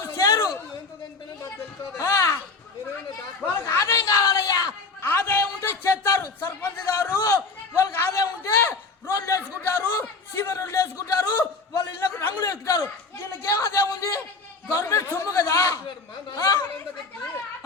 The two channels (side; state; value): right; quieter; 4.1 dB